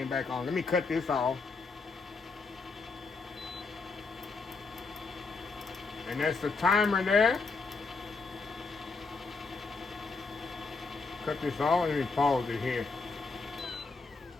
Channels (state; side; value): quieter; right; 4.2 dB